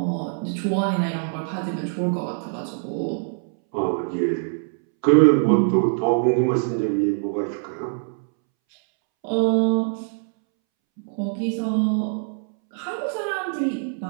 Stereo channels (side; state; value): left; silent; 63 dB below the other